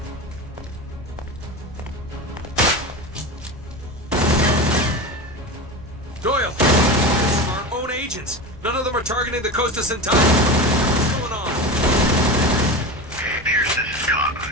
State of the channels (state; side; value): normal; both; correlation 0.26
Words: Doyle! Our own agents! None of them are targeting the Costas and Tabbins. What's going on? Pierce, this is